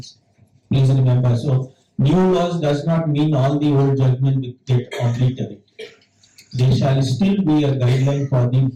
Please remember, so new laws does not mean all the old judgment will get obliterated. there shall still be a guideline for the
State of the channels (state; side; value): identical; both; correlation 1.00